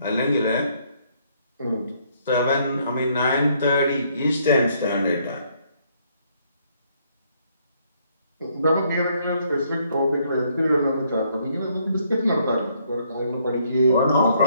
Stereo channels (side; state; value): both; inverted; correlation -0.68